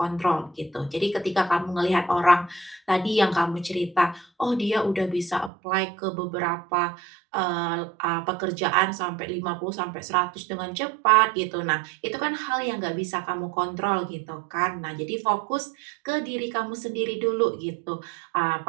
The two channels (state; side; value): drops out; left; at 5.5 s